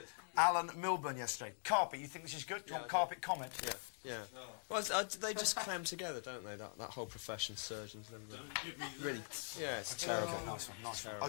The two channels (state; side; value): silent; right; digital silence